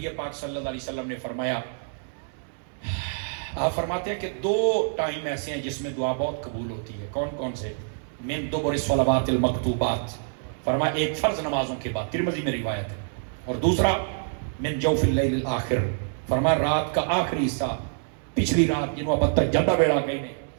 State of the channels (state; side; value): silent; left; 61 dB below the other